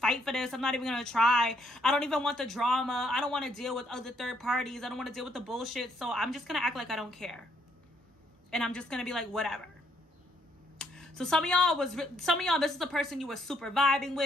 for this. I'm not even going to try. I don't even want the drama. I don't want to deal with other third parties. I don't want to deal with the bullshit. So I'm just going to act like I don't care. And I'm just going to be like, whatever. So some of y'all, this is the person you were super vibing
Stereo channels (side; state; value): both; normal; correlation 0.71